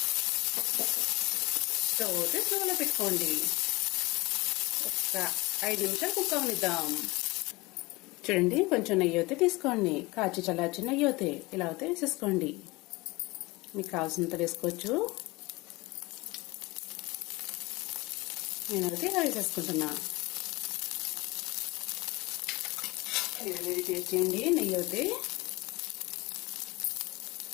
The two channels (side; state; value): right; quieter; 22.6 dB